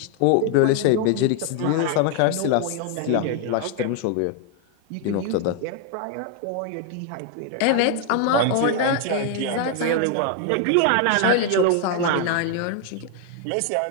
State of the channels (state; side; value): different; both; correlation 0.00